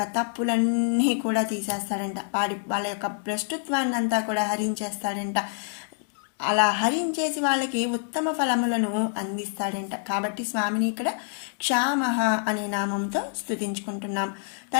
తప్పులన్నీ కూడా తీసేస్తాడంట. వాళ్ళ యొక్క భ్రష్టుత్వాన్ని అంతా కూడా హరించేస్తాడంట. అలా హరించేసి వాళ్ళకి ఉత్తమ ఫలములను అందిస్తాడంట. కాబట్టి స్వామిని ఇక్కడ క్షామః అనే నామంతో స్తుతించుకుంటున్నాం.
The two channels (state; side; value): silent; right; digital silence